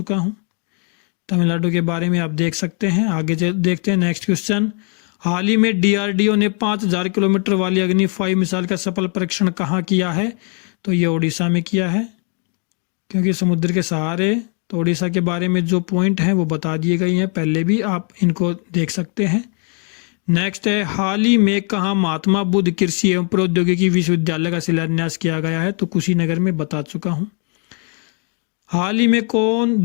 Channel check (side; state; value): right; quieter; 39.4 dB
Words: हूँ। तमिलनाडु के बारे में आप देख सकते हैं। आगे देखते हैं नेक्स्ट क्वेश्चन। हाल ही में डीआरडीओ ने 5000 किलोमीटर वाली अग्नि 5 मिसाइल का सफल परीक्षण कहाँ किया है? तो ये उड़ीसा में किया है, क्योंकि समुद्र के सहारे। तो उड़ीसा के बारे में जो पॉइंट हैं वो बता दिए गए हैं, पहले भी आप इनको देख सकते हैं। नेक्स्ट है, हाल ही में कहाँ महात्मा बुद्ध कृषि एवं प्रौद्योगिकी विश्वविद्यालय का शिलान्यास किया गया है? तो कुशीनगर में बता चुका हूँ। हाल ही में कौन